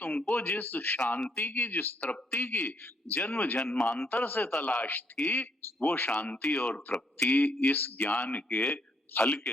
जिस शांति की, जिस तृप्ति की जन्म जन्मांतर से तलाश थी, वो शांति और तृप्ति इस ज्ञान के फल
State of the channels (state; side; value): normal; both; correlation 0.72